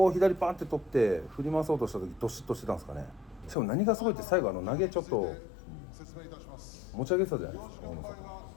左パンって取って振り回そうとした時ドシッとしてたんですかね。しかも何がすごいって最後投げちょっと持ち上げてたじゃないですか大野さ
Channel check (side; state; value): right; drops out; at 3.6 s